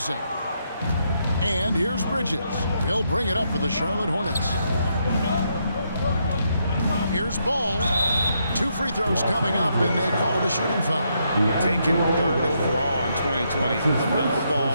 And here's Bridges. He'll bring it up for the Charlotte Hornets. Here's Ball. 2 free throws coming up, and they call the shooting foul. Taken 3rd overall in 2020, LaMelo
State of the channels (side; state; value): both; inverted; correlation -0.77